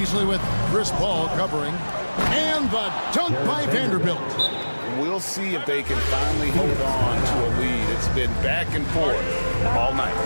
with Chris Paul covering. And the dunk by Vanderbilt. We'll see if they can finally hold on to a lead. It's been back and forth all night.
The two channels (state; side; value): inverted; both; correlation -1.00